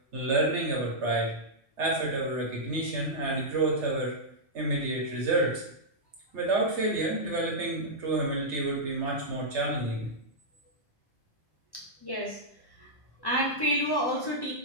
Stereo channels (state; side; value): normal; both; correlation -0.09